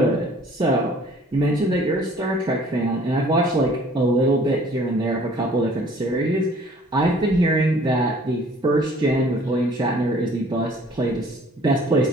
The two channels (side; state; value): both; normal; correlation 0.54